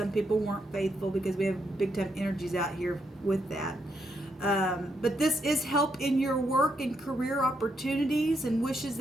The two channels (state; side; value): normal; both; correlation 0.79